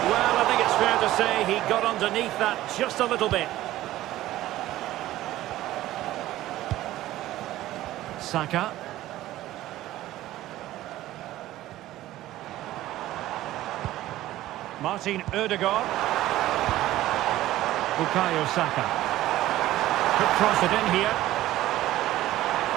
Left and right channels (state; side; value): quieter; left; 15.1 dB